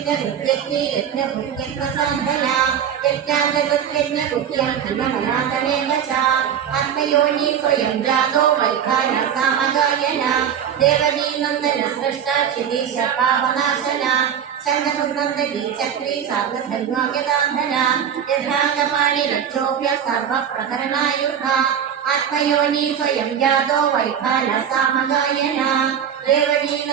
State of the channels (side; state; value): left; quieter; 8.6 dB